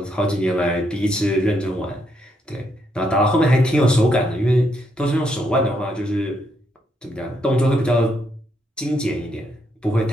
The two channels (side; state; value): both; normal; correlation 0.76